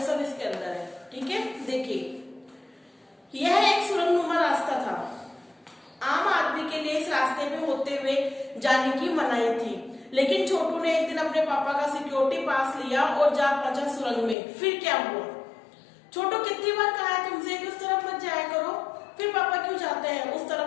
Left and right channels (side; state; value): right; drops out; at 14.4 s